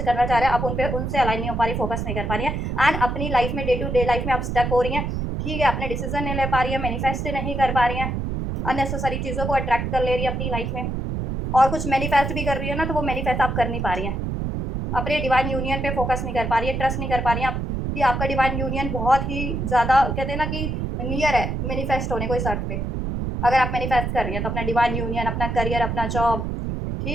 चाह रहे हैं, आप उनसे अलाइन नहीं हो पा रही, फोकस नहीं कर पा रही है। एंड अपनी लाइफ में, डे टू डे लाइफ में आप स्टक हो रही हैं, ठीक है, अपने डिसीजन नहीं ले पा रही है, मैनिफेस्ट नहीं कर पा रही हैं, अननेसेसरी चीज़ों को अट्रैक्ट कर ले रही है अपनी लाइफ में, और कुछ मैनिफेस्ट भी कर रही है ना, तो वो मैनिफेस्ट आप कर नहीं पा रही हैं, अपने डिवाइन यूनियन पे फोकस नहीं कर पा रही है, ट्रस्ट नहीं कर पा रही हैं आप कि आपका डिवाइन यूनियन बहुत ही ज़्यादा कहते हैं ना कि नियर है मैनिफेस्ट होने को इस अर्थ पे। अगर आप मैनिफेस्ट कर रही हैं तो अपना डिवाइन यूनियन, अपना करियर, अपना जॉब,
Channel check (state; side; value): noise; right; rumble, 2 dB below the sound